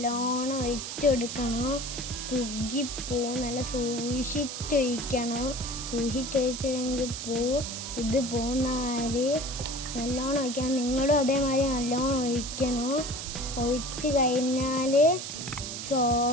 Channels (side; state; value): right; noise; hiss, 7 dB below the sound